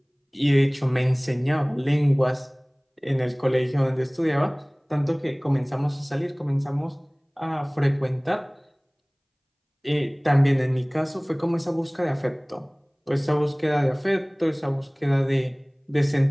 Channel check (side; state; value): both; identical; correlation 1.00